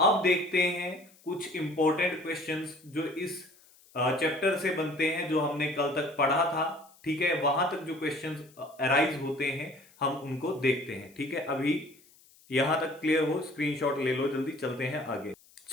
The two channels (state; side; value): noise; left; hiss, 28 dB below the sound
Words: अब देखते हैं कुछ इंपॉर्टेंट क्वेश्चंस जो इस चैप्टर से बनते हैं, जो हमने कल तक पढ़ा था। ठीक है, वहां तक जो क्वेश्चंस अराइज होते हैं हम उनको देखते हैं। ठीक है, अभी यहां तक क्लियर हो, स्क्रीनशॉट ले लो, जल्दी चलते हैं आगे।